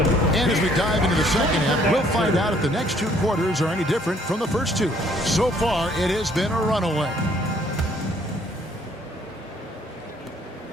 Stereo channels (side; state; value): both; normal; correlation 0.63